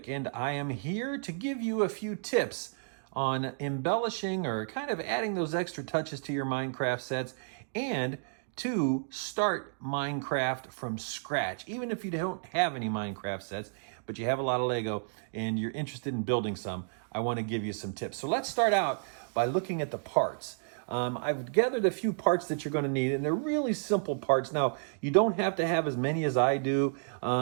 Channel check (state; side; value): silent; left; digital silence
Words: and I am here to give you a few tips on embellishing or kind of adding those extra touches to your Minecraft sets and to start Minecraft from scratch. Even if you don't have any Minecraft sets, but you have a lot of Lego and you're interested in building some, I want to give you some tips. So let's start out by looking at the parts. I've gathered a few parts that you're going to need, and they're really simple parts. Now, you don't have to have as many as I do.